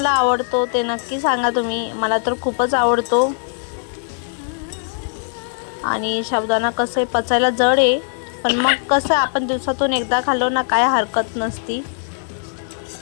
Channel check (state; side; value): silent; right; digital silence